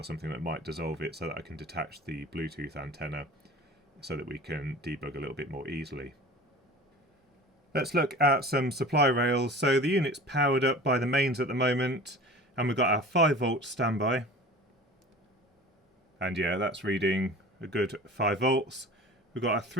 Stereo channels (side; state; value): both; normal; correlation 0.39